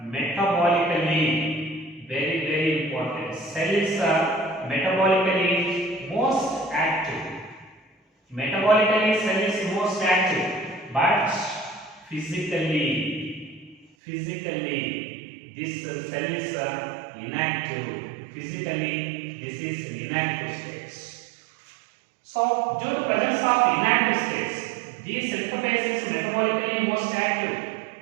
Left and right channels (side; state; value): left; drops out; at 13.9 s